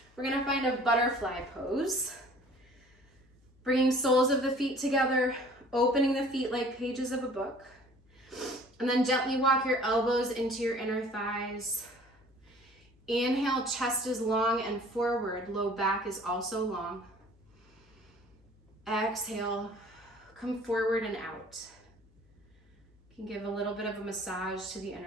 We're gonna find a butterfly pose. Bringing soles of the feet together, opening the feet like pages of a book. And then gently walk your elbows into your inner thighs. Inhale, chest is long and forward, low back is also long. Exhale, come forward and out. You can give a little bit of a massage to the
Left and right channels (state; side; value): noise; left; hum, 30 dB below the sound